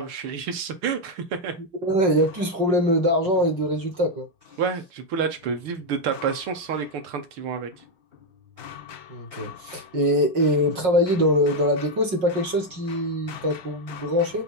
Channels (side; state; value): left; late; 5.5 ms